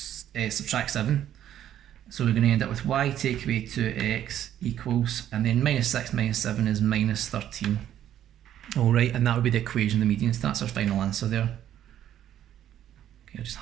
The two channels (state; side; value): quieter; left; 11.1 dB